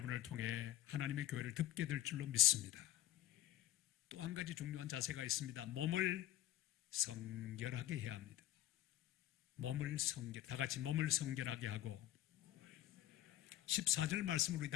통해 하나님의 교회를 덮게 될 줄로 믿습니다. 또 한 가지 중요한 자세가 있습니다. 몸을 성결하게 해야 합니다. 다 같이 몸을 성결하게 하고, 14절 말씀을 우리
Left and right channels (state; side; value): quieter; right; 13.5 dB